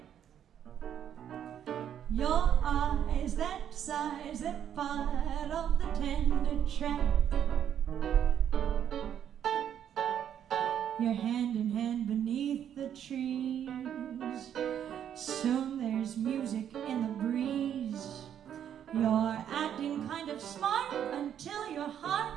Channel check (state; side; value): quieter; left; 9.5 dB